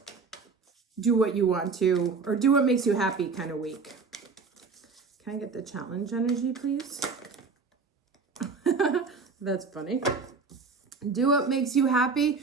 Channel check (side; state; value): left; quieter; 4.8 dB